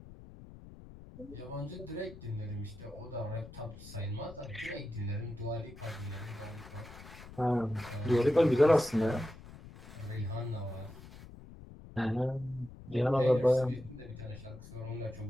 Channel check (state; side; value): noise; left; rumble, 17 dB below the sound